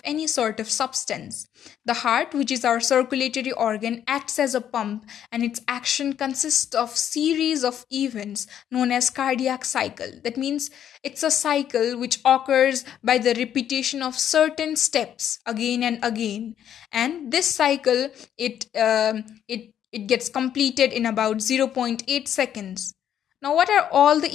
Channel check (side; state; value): right; quieter; 9.9 dB